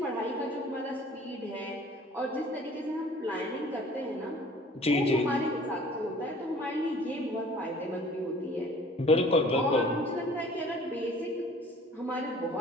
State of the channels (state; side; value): normal; both; correlation 0.50